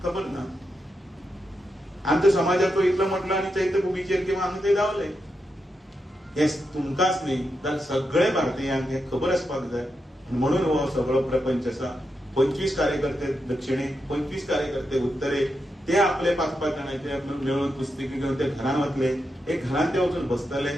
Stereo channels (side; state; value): both; normal; correlation 0.86